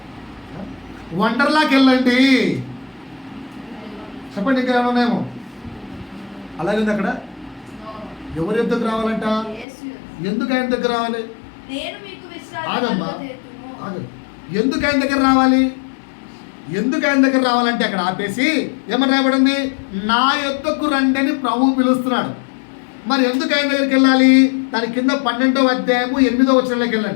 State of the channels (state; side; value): drops out; right; at 9.7 s